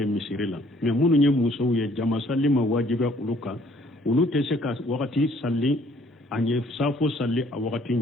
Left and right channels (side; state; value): both; normal; correlation 0.61